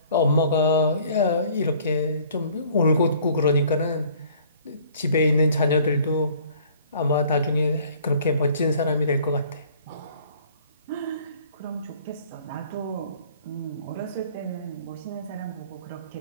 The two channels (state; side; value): inverted; both; correlation -0.55